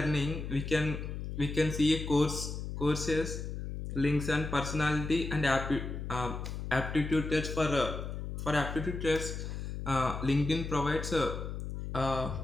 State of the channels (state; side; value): noise; left; hum, 6 dB below the sound